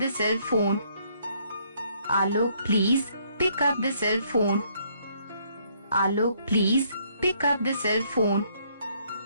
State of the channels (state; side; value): inverted; both; correlation -0.68